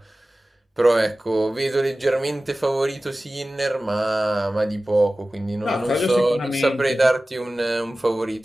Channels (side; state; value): both; normal; correlation 0.96